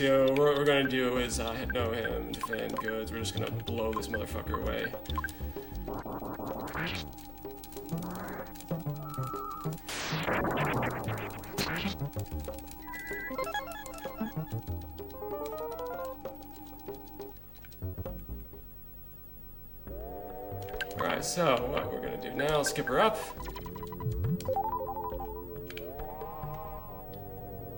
what we're gonna do is know him, defend goods. We're just gonna blow this motherfucker away. Alright, so what we're gonna do now, skip her up.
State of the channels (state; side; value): noise; left; hum, 15 dB below the sound